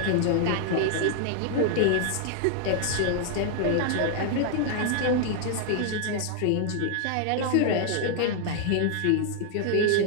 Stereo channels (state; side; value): different; both; correlation -0.01